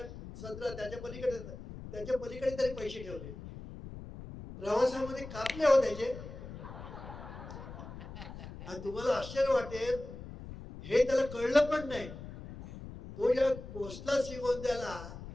सदरा त्याच्या पलीकडे तरी पैसे ठेवले. प्रवासामध्ये कापले हो त्याचे. आणि तुम्हाला आश्चर्य वाटेल, हे त्याला कळलं पण नाही. तो जेव्हा पोचला श्रीगोंद्याला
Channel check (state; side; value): noise; left; rumble, 12 dB below the sound